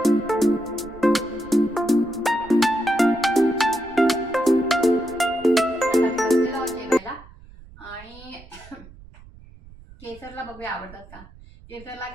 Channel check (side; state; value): right; noise; rumble, 21 dB below the sound